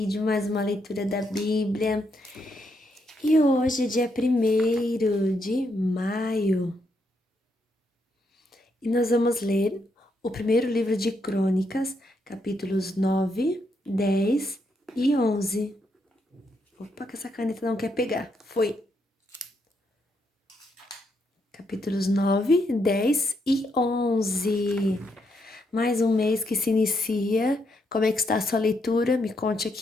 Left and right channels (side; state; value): both; normal; correlation 0.78